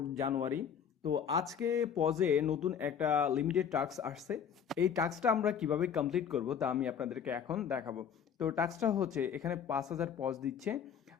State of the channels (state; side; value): quieter; right; 7.8 dB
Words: জানুয়ারি। তো আজকে পজে নতুন একটা লিমিটেড টাস্ক আসছে। এই টাস্কটা আমরা কিভাবে কমপ্লিট করব তা আমি আপনাদেরকে এখন দেখাবো। তো টাস্কটা হচ্ছে এখানে 5,000 পজ দিচ্ছে।